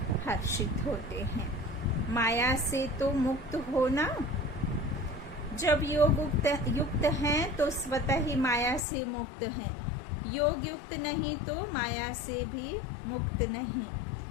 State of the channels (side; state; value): right; drops out; at 8.8 s